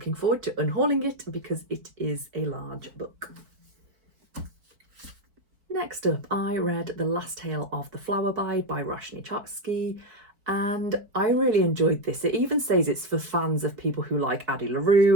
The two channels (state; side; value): late; left; 4.5 ms